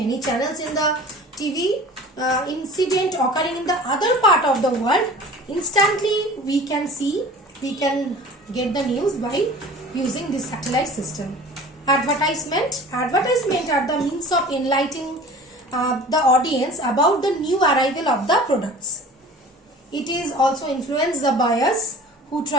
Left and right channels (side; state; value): both; normal; correlation 0.42